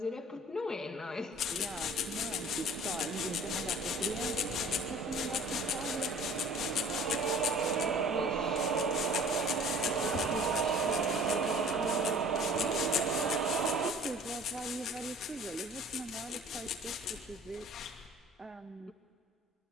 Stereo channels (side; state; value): both; normal; correlation 0.48